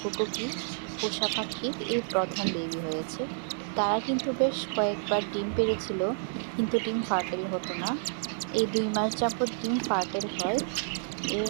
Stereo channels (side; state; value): left; silent; 58 dB below the other